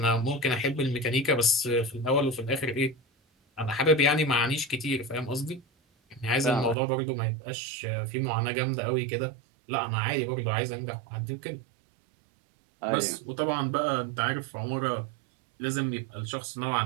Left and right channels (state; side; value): drops out; left; at 6.8 s